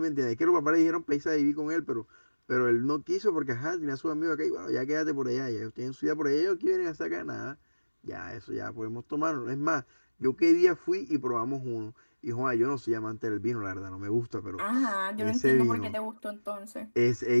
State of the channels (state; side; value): inverted; both; correlation -1.00